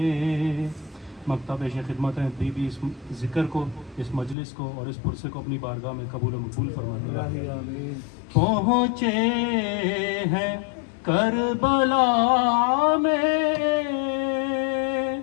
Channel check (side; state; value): right; drops out; at 4.4 s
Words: مکتب پیش خدمت ہیں بھی اس ذکر کو، اس مجلس کو اور اس پرسے کو اپنی بارگاہ میں قبول و مقبول فرمائے. پہنچے ہیں کربلا میں